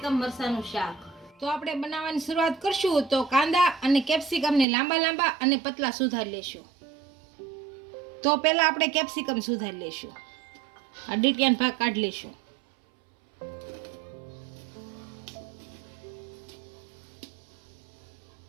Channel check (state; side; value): drops out; left; at 4.7 s